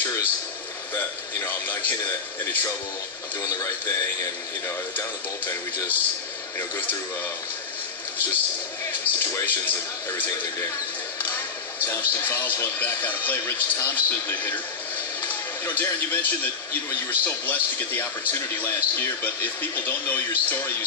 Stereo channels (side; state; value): right; quieter; 5.3 dB